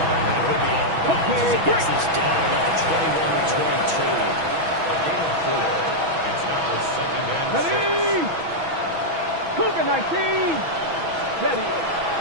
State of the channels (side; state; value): left; late; 6.1 ms